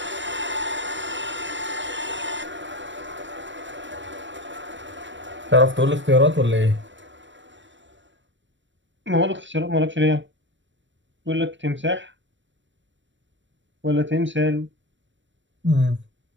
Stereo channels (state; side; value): late; left; 0.54 ms